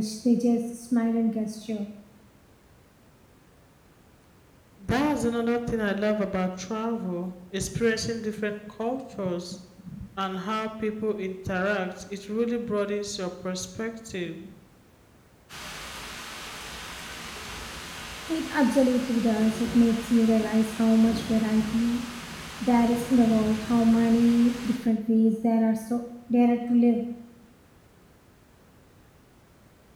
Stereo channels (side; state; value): both; identical; correlation 1.00